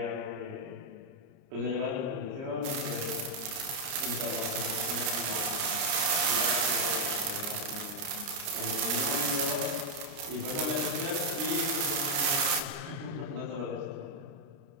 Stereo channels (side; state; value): left; late; 30 ms